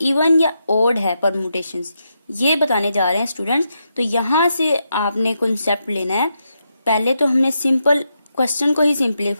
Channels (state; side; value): inverted; both; correlation -0.83